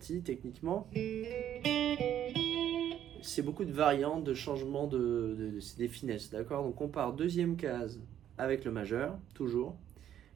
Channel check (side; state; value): left; quieter; 10.6 dB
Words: techniquement. C'est beaucoup de variantes, de changements, c'est des finesses, d'accord? Donc on part deuxième case avec le majeur, toujours.